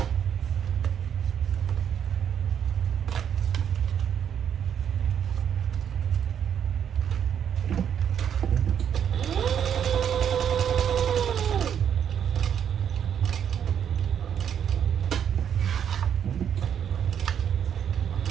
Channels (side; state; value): left; quieter; 8.6 dB